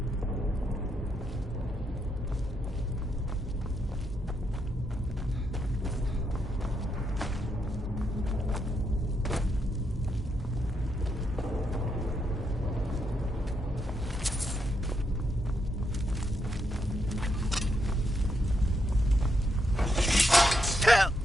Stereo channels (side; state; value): both; normal; correlation 0.80